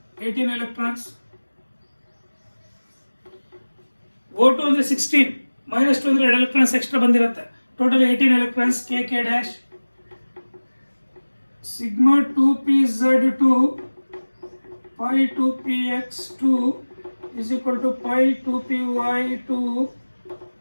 18 electrons. O2 ಅಂದ್ರೆ 16 minus 2 ಅಂದ್ರೆ 2 electrons extra ಬಂದಿರುತ್ತೆ, total 18 electrons. K dash sigma 2pz2 pi 2px2 is equal to pi 2py2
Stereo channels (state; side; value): inverted; both; correlation -1.00